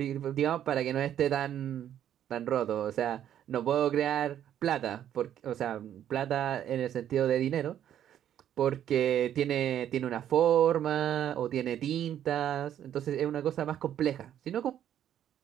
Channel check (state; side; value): quieter; left; 10.5 dB